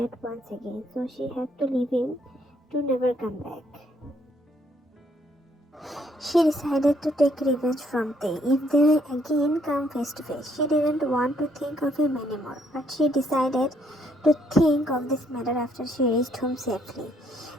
once again, so she had to leave him to never come back. She decided to take revenge from Tae if they again come face to face. She didn't want to think of him anymore, but she decided to think of this matter after she reached home safely.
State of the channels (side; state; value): both; normal; correlation 0.69